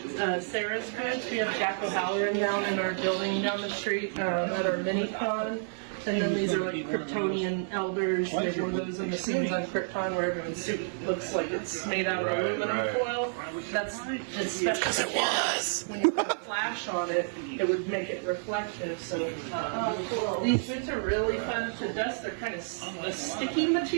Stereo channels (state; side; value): silent; left; digital silence